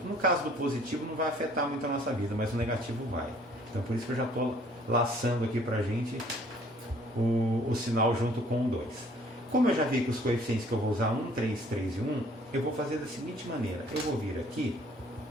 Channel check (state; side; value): normal; both; correlation 0.58